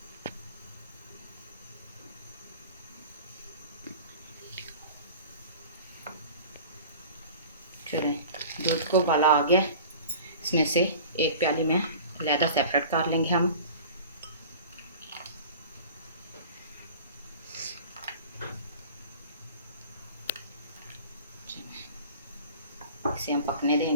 चलें दूध को उबाला आ गया। इसमें से एक प्याली में अलहदा सेपरेट कर लेंगे हम। इसे हम पकने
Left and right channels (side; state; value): both; inverted; correlation -0.40